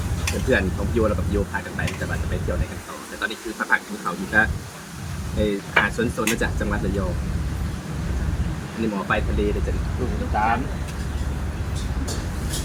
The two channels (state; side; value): identical; both; correlation 1.00